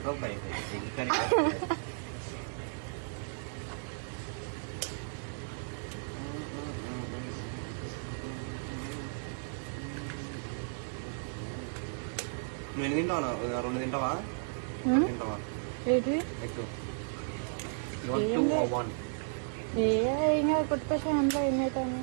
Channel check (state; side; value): silent; left; 55 dB below the other